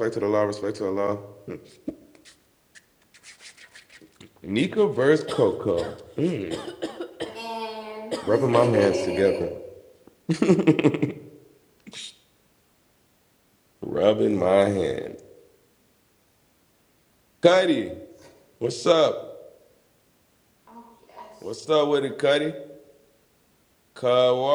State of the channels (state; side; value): identical; both; correlation 1.00